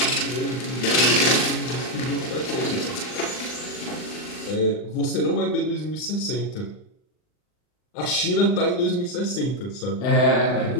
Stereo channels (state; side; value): late; right; 39 ms